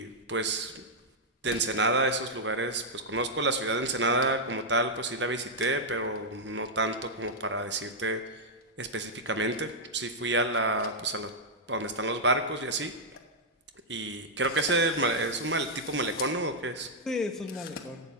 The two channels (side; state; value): both; normal; correlation -0.05